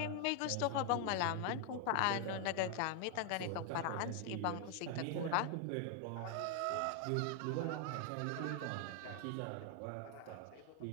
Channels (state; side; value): different; both; correlation 0.00